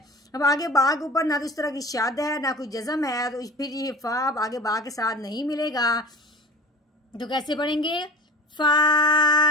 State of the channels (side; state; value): both; normal; correlation 0.37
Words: अब आगे बा के ऊपर ना तो इस तरह की शाद है ना कोई जज़म है, तो फिर ये फा आगे बा के साथ नहीं मिलेगा। तो कैसे पढ़ेंगे?